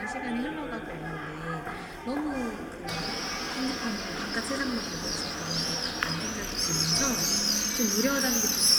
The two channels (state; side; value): identical; both; correlation 1.00